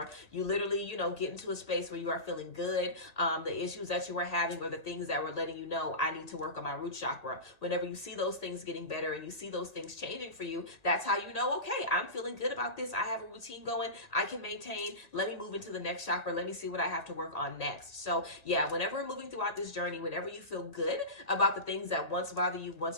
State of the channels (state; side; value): late; right; 1.8 ms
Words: you literally, get into a space where you are feeling good. The issues that you were having or the things that were letting you know, I need to work on my root chakra. Whenever you see those things getting better and you see those things changing for you, that's how you know, okay, I'm feeling good about this. I have a routine going. I can maintain. Let me move into the next chakra. Let me see what I have to work on next. So yeah, whenever we're moving throughout this journey, whenever you feel good about the things that once bothered you,